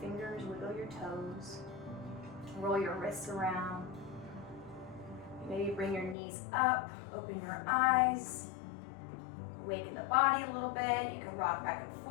wiggle your toes, roll your wrists around. Maybe bring your knees up, open your eyes, awaken the body a little bit. You can rock back and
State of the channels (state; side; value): drops out; right; at 6.2 s